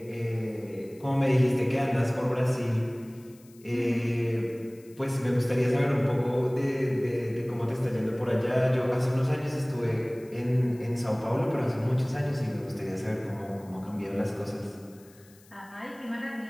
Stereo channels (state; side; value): noise; left; hiss, 27 dB below the sound